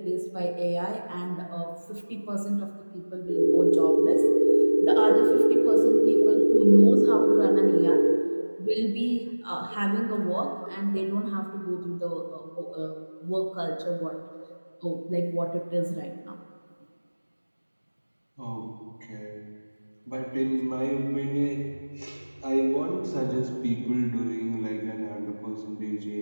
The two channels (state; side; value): inverted; both; correlation -1.00